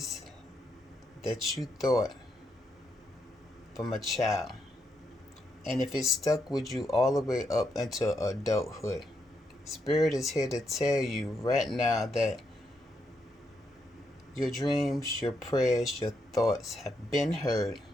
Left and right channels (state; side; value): normal; both; correlation 0.80